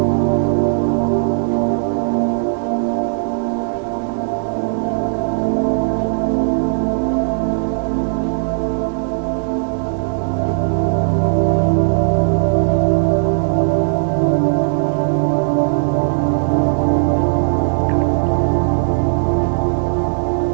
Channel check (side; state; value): left; silent; 68 dB below the other